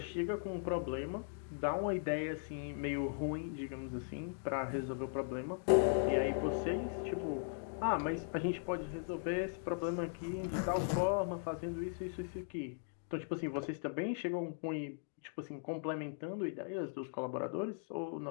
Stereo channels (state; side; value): silent; right; digital silence